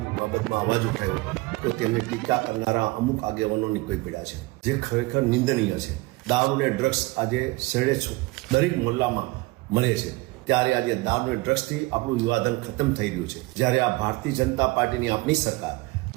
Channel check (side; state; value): left; quieter; 22.5 dB